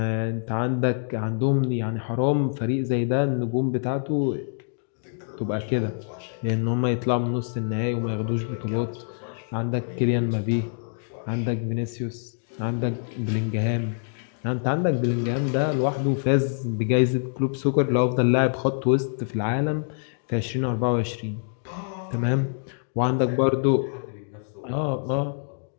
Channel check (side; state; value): right; silent; digital silence